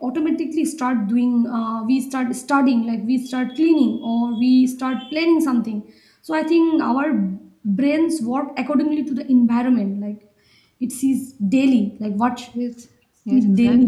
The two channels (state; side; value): identical; both; correlation 1.00